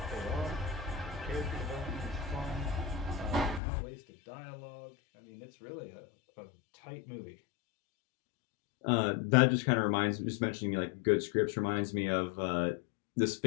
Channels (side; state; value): right; drops out; at 3.6 s